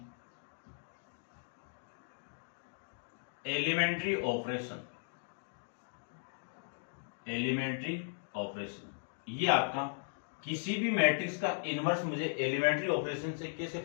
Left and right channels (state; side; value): silent; right; digital silence